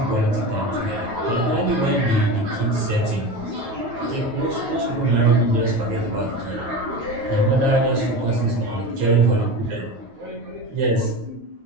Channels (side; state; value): left; late; 9.3 ms